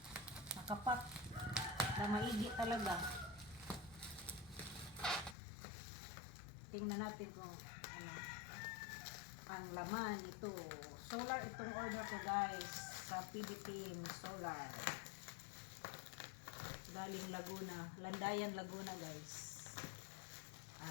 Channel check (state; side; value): drops out; right; at 5.4 s